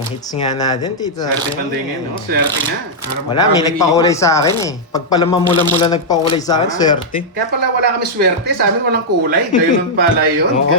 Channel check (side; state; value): both; normal; correlation -0.06